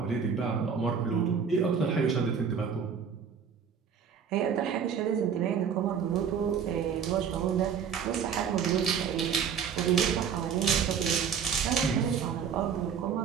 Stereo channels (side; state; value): left; quieter; 7.1 dB